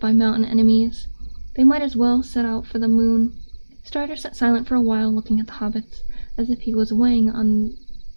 mountain enemies? They might as well set out for the moon. Strider sat silent for a while, looking at the hobbits, as if he was weighing on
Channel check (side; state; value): both; inverted; correlation -1.00